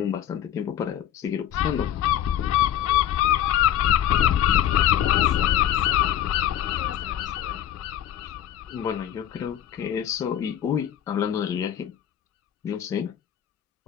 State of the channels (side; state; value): right; quieter; 11.0 dB